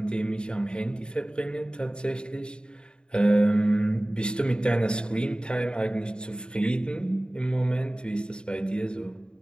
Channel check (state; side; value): late; right; 0.050 ms